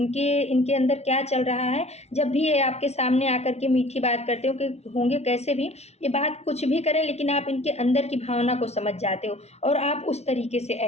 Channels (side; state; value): right; late; 0.31 ms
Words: इनके अंदर क्या चल रहा है। जब भी ये आपके सामने आकर के मीठी बात करते हो कि होंगे कैसे भी, ये बात कुछ भी करें लेकिन आप इनके अंदर की भावना को समझ जाते हो और आप उस तरीके से